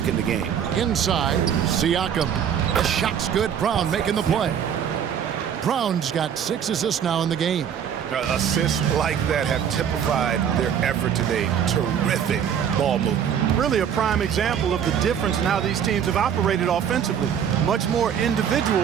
in the game. Inside, Siakam. The shot's good. Brown making the play. Brown's got 6 assists now in the game. Assists like that have typified their effort today. Terrific ball movement. Really a prime example of the difference in how these teams have operated offensively. Much more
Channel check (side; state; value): left; quieter; 8.5 dB